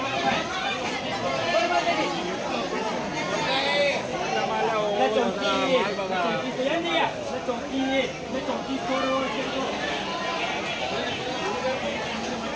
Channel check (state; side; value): identical; both; correlation 1.00